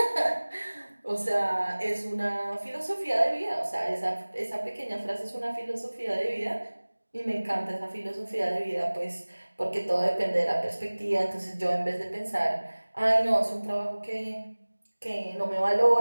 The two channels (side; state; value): both; inverted; correlation -1.00